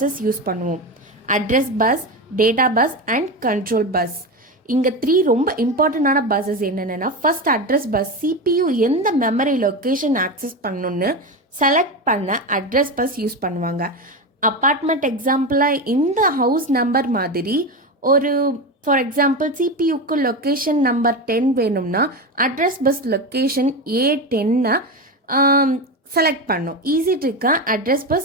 யூஸ் பண்ணுவோம். Address bus, data bus and control bus. இங்கே 3 ரொம்ப இம்பார்ட்டண்டான பஸ்ஸஸ் என்னென்னா, ஃபர்ஸ்ட் அட்ரஸ் பஸ். CPU எந்த மெமரி லொக்கேஷன் ஆக்சஸ் பண்ணணுன்னு செலக்ட் பண்ண அட்ரஸ் பஸ் யூஸ் பண்ணுவாங்க. அப்பார்ட்மெண்ட் எக்ஸாம்பிளாக இந்த ஹவுஸ் நம்பர் மாதிரி ஒரு ஃபார் எக்ஸாம்பிள் CPUக்கு லொக்கேஷன் நம்பர் 10 வேணும்னா address bus location A10 select பண்ணும். ஈஸி ட்ரிக்காக address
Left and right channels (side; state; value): both; normal; correlation 0.19